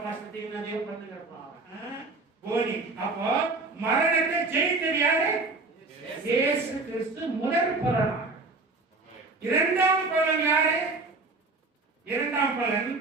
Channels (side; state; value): left; quieter; 3.5 dB